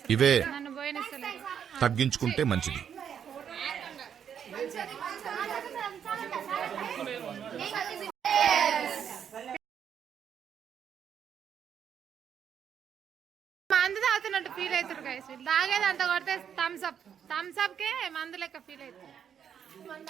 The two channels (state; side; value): quieter; left; 8.3 dB